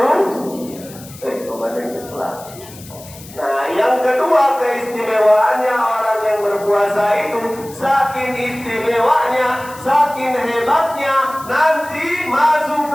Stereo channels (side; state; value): left; noise; hiss, 18 dB below the sound